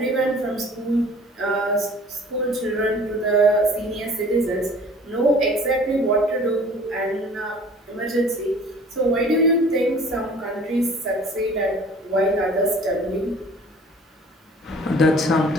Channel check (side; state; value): both; normal; correlation 0.49